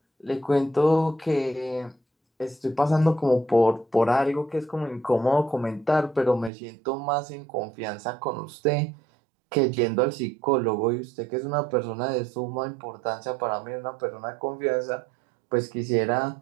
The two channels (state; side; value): drops out; left; at 6.5 s